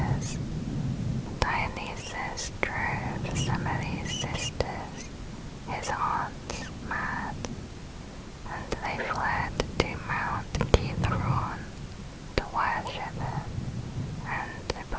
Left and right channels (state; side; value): identical; both; correlation 1.00